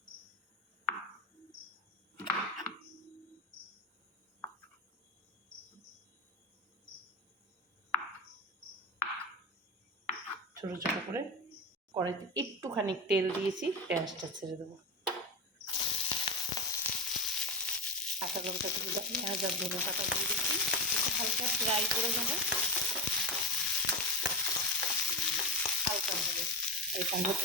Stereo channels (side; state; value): both; normal; correlation 0.16